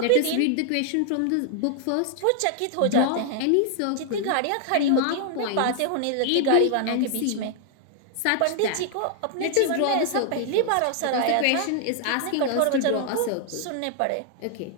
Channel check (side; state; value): both; different; correlation -0.01